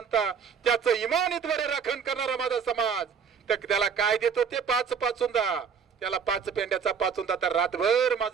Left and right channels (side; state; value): left; quieter; 6.6 dB